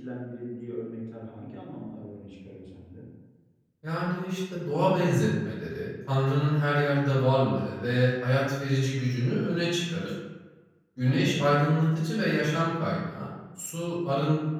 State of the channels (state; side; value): identical; both; correlation 1.00